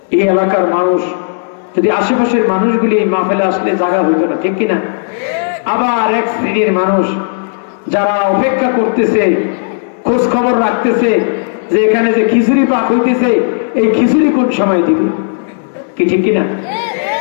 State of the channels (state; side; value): silent; right; digital silence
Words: এই এলাকার মানুষ, যদি আশেপাশের মানুষগুলি এই মাহফিলে আসলে জায়গা হইত না, ঠিক কিনা? আবার এক শ্রেণীর মানুষ যারা অপেক্ষা করতেছে, খোঁজ খবর রাখতেছে যে এখানে যে খিচুড়ি পাক হইতেছে, এই খিচুড়ি কোন সময় দিবে, কি ঠিক কিনা?